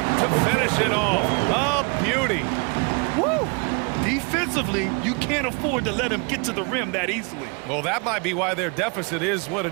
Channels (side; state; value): left; quieter; 32.2 dB